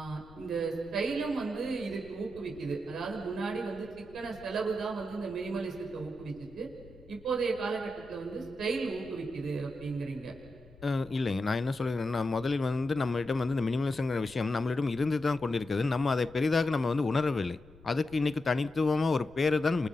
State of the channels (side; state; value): left; noise; rumble, 22 dB below the sound